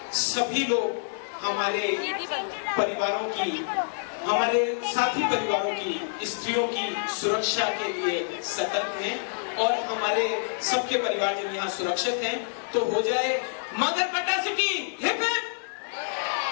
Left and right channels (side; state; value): right; silent; digital silence